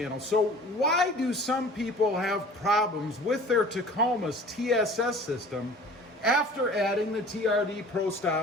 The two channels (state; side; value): normal; both; correlation 0.45